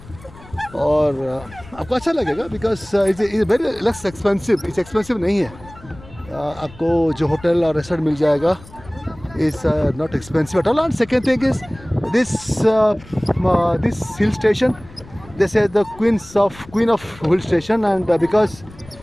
और आपको अच्छा लगेगा because it's very less expensive, it's expensive नहीं है। आपको जो होटल और रेस्टोरेंट मिल जाएगा is not expensive at all. And second thing is this hill station, they say the queen of hill station, and because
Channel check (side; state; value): left; noise; rumble, 20 dB below the sound